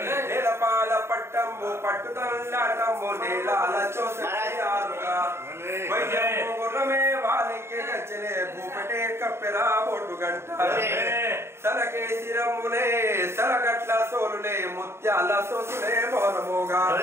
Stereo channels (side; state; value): left; late; 0.12 ms